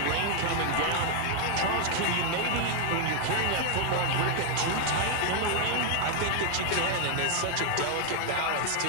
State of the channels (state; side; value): different; both; correlation 0.00